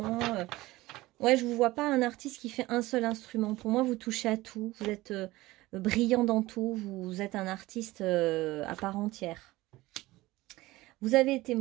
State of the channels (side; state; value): left; quieter; 18.8 dB